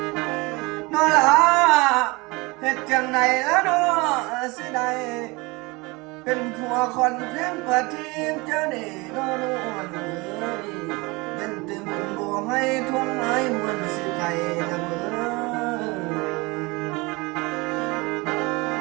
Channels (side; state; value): left; quieter; 24.9 dB